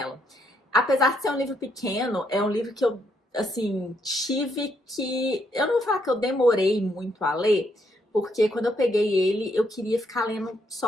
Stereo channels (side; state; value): both; normal; correlation 0.75